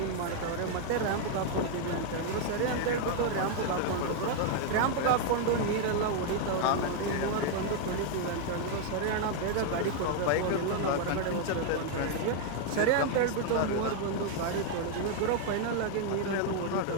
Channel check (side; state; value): both; different; correlation 0.00